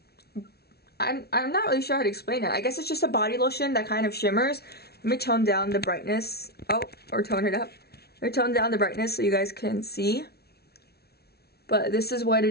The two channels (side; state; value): right; late; 0.46 ms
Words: I'm not really sure how to explain it. I guess it's just a body lotion that kind of shimmers. Let me tone down the brightness. Oh, or tone it up. Let me tone down the brightness so you guys can see. But this is what